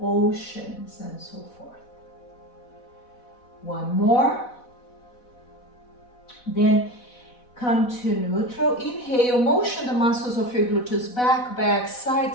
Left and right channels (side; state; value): right; late; 4.1 ms